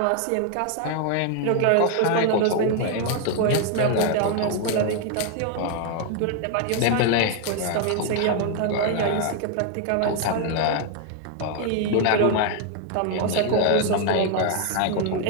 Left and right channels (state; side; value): different; both; correlation 0.01